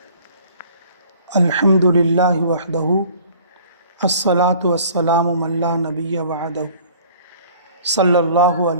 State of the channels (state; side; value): inverted; both; correlation -0.52